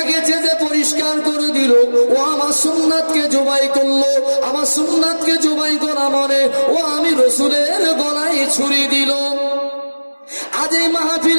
চেঁচে পরিষ্কার করে দিল, ও আমার সুন্নাতকে জবাই করলো। আমার সুন্নাতকে জবাই করা মানে ও আমি রসুলের গলায় ছুরি দিল। আজ এই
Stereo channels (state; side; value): inverted; both; correlation -1.00